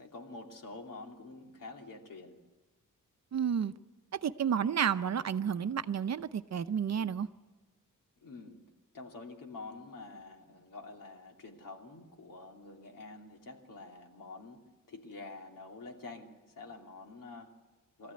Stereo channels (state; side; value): quieter; left; 6.5 dB